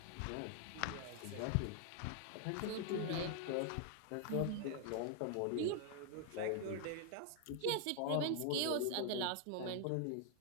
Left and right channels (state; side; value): different; both; correlation 0.00